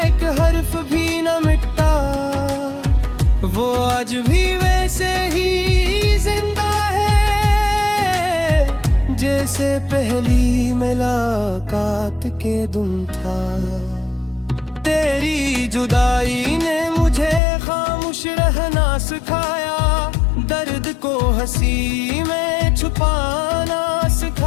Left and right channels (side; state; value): right; drops out; at 17.4 s